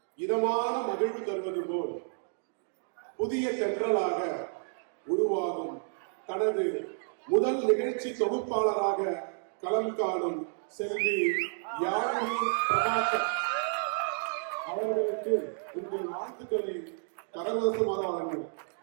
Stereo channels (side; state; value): left; silent; digital silence